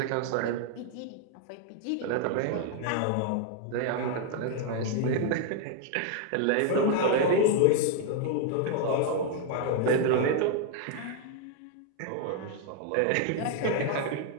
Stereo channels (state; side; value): different; both; correlation 0.00